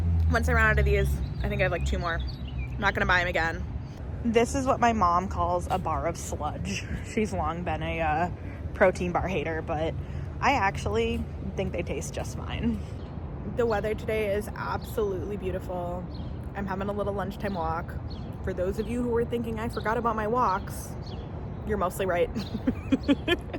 once I run out of these, I think I have like 2 more. I'm not gonna buy them again. This is what my mom calls a bar of sludge. She's long been a protein bar hater, but I actually think they taste just fine. The weather today is absolutely beautiful. I'm having a little lunchtime walk. For those of you who were thinking I forgot about my walks, you're mostly right.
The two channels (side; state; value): both; identical; correlation 1.00